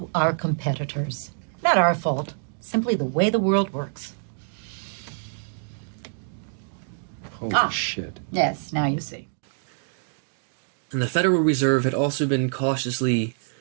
our competitors. Not our fault, simply the way the world works. Holy shit. Yes, now you see. And the Federal Reserve had also been cautiously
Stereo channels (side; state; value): left; silent; digital silence